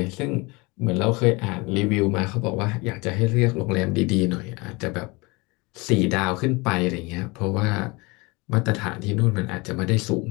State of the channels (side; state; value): right; quieter; 25.6 dB